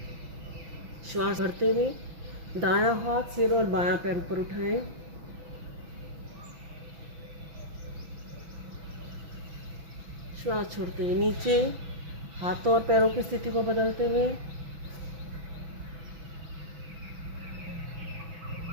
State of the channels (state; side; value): late; left; 5.9 ms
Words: श्वास भरते हुए दायां हाथ सिर और बायां पैर ऊपर उठाएं। श्वास छोड़ते हुए नीचे, हाथों और पैरों की स्थिति को बदलते हुए।